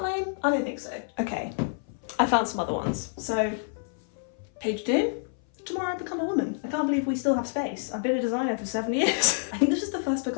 lame? I don't think so. Okay, I found some other ones. So, page 2. Tomorrow I become a woman. I can't believe we still have space. I've been a designer for 7 years. I think this is the first book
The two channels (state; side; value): silent; right; 57 dB below the other